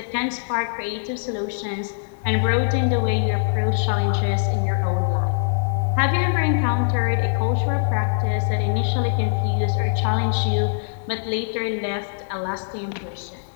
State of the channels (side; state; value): right; silent; digital silence